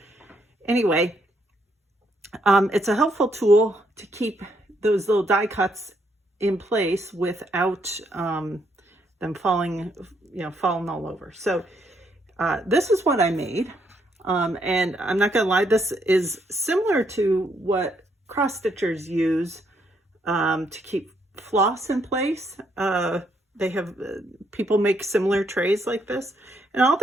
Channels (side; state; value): both; normal; correlation 0.74